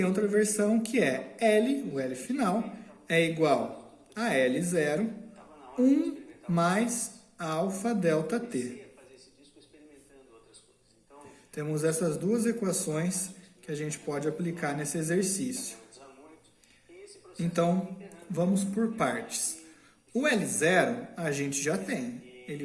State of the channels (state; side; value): identical; both; correlation 1.00